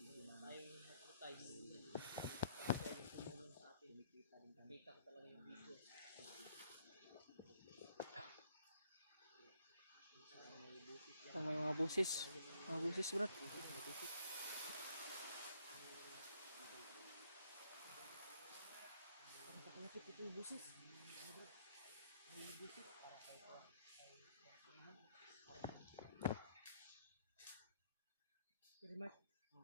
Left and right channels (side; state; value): both; inverted; correlation -0.68